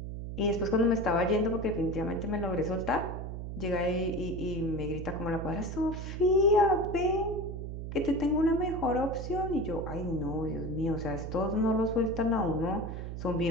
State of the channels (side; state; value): right; noise; hum, 7 dB below the sound